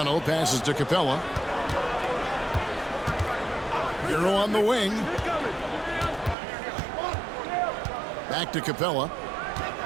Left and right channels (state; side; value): drops out; left; at 6.4 s